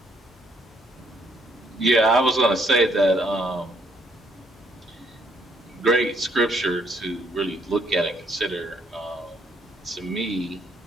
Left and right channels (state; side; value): normal; both; correlation 0.69